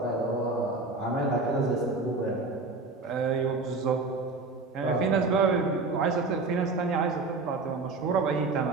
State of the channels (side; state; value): left; quieter; 3.7 dB